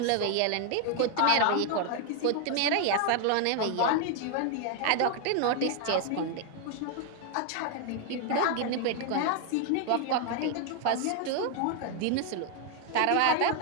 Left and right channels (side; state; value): both; different; correlation 0.00